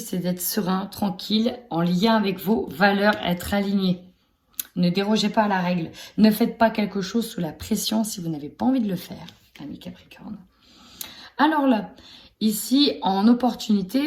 c'est d'être serein, tranquille, en lien avec vos valeurs, être aligné. Ne dérogez pas à la règle. Ne faites pas quelque chose sous la pression si vous n'avez pas envie de le faire, ami Capricorne. Alors là, ici, en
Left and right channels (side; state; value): both; identical; correlation 1.00